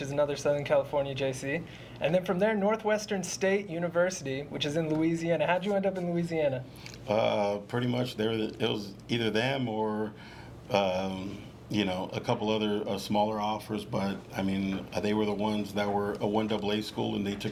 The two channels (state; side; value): identical; both; correlation 1.00